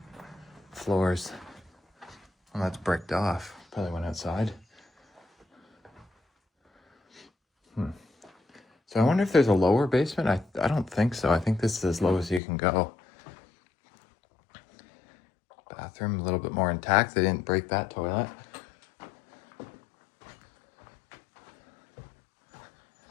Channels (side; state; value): right; drops out; at 12.4 s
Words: floors. Well, that's bricked off. Probably went outside. So I wonder if there's a lower basement. I don't think so. I think this is as low as you can go. Bathroom a little bit more intact. They didn't break that toilet.